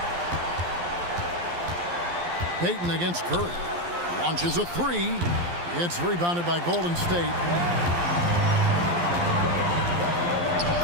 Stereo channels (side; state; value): left; late; 12 ms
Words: Payton against Curry. Launches a three. It's rebounded by Golden State.